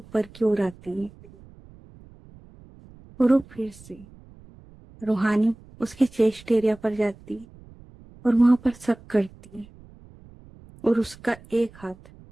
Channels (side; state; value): right; noise; rumble, 23 dB below the sound